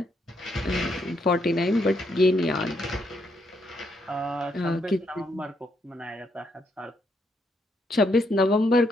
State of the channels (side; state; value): both; normal; correlation 0.76